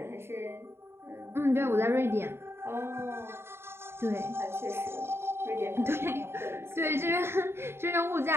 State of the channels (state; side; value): late; left; 0.12 ms